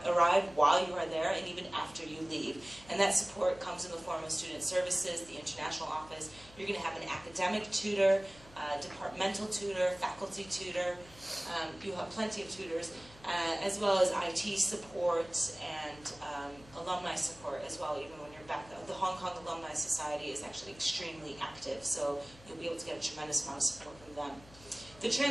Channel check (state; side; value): noise; left; hum, 22 dB below the sound